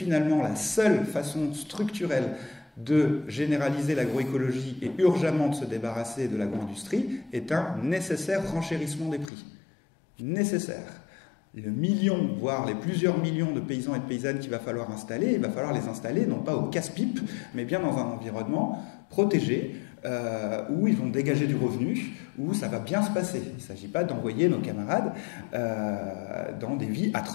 la seule façon structurelle de généraliser l'agroécologie et urgemment de se débarrasser de l'agro-industrie est un nécessaire renchérissement des prix. Nécessaire. Le million, voire les plusieurs millions de paysans et de paysannes qu'il va falloir installer, il va falloir les installer non pas au casse-pipe, mais bien dans un environnement protégé, où ils vont dégager du revenu, où ça va bien se passer. Il ne s'agit pas d'envoyer nos camarades dans des vies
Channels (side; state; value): right; drops out; at 9.3 s